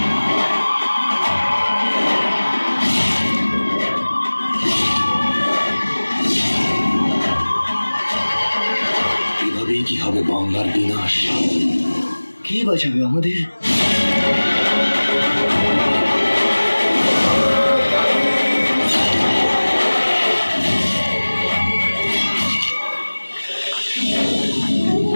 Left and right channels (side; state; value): both; inverted; correlation -1.00